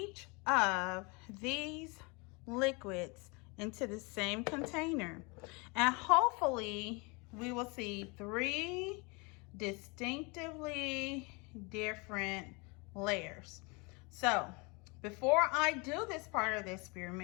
of these liquids into the same container, and hopefully we will see 3 distinctively different layers. So before I do this part of the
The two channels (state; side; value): quieter; right; 29.4 dB